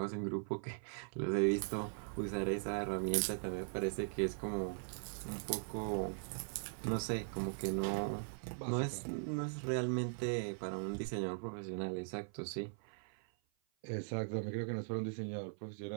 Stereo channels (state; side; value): silent; left; 51 dB below the other